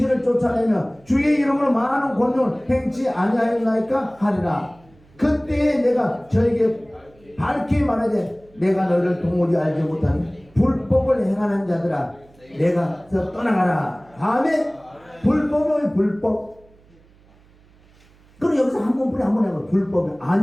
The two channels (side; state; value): right; noise; hum, 29 dB below the sound